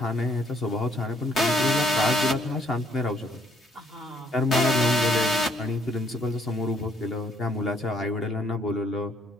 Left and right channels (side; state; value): both; normal; correlation 0.66